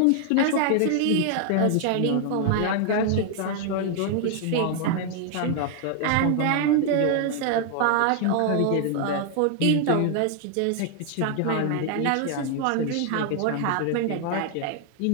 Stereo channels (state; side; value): different; both; correlation 0.00